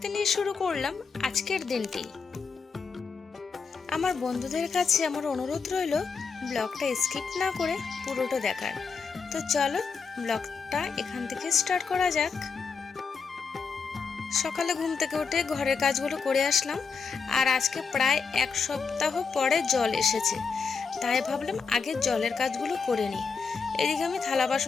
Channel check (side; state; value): right; quieter; 5.4 dB